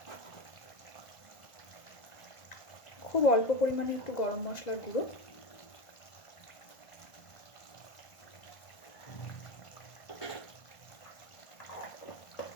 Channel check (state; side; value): late; right; 1.5 ms